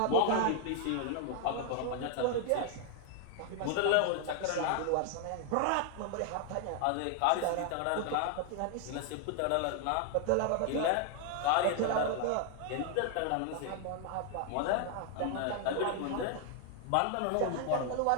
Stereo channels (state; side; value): different; both; correlation 0.00